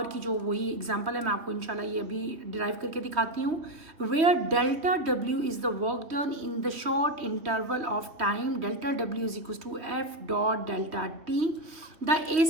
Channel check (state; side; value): late; left; 3.1 ms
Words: की जो वही एग्जांपल है मैं आपको इंशाल्लाह ये अभी डिराइव करके दिखाती हूँ। Where delta W is the work done in the short interval of time, delta W is equal to F dot delta T. The